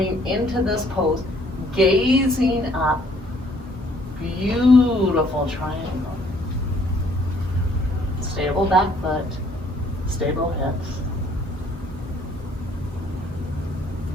into this pose, gazing up. Beautiful triangle. Stable back foot, stable hips.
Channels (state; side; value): normal; both; correlation 0.62